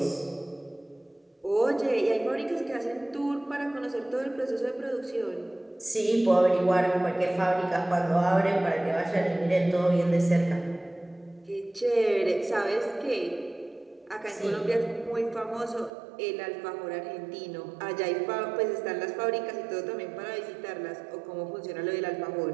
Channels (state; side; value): drops out; left; at 15.9 s